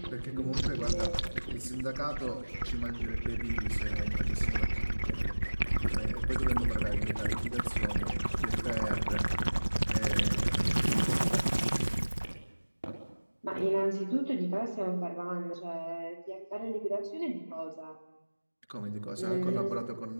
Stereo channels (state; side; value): inverted; both; correlation -1.00